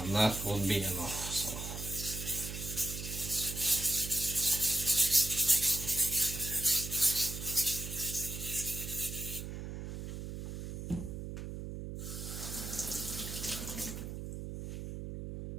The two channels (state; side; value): noise; right; hum, 7 dB below the sound